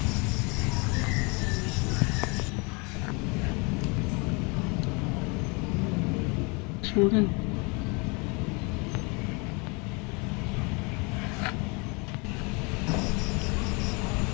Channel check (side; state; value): right; quieter; 30.4 dB